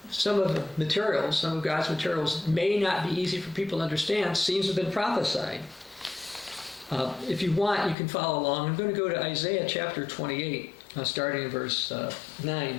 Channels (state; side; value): drops out; right; at 8.0 s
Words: God's materials may not be easy for people to understand seems to have been prophesied. If you want, you can follow along. I'm going to go to Isaiah chapter 28, starting in verse